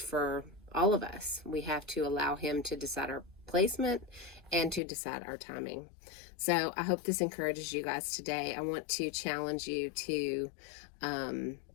all of us. We have to allow him to decide our placement and to decide our timing. So I hope this encourages you guys today. I want to challenge you to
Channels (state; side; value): drops out; right; at 4.8 s